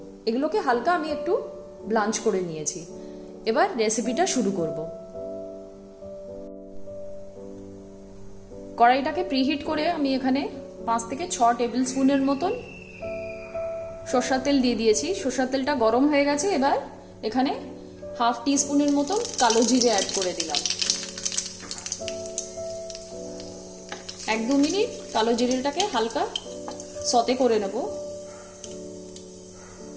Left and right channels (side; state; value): both; identical; correlation 1.00